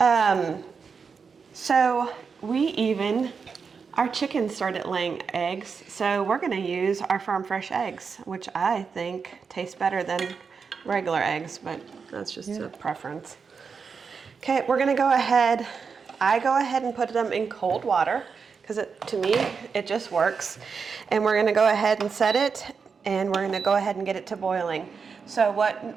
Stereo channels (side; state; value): left; quieter; 5.6 dB